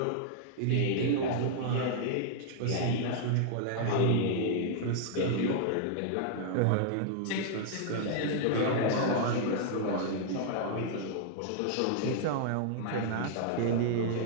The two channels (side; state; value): both; different; correlation -0.01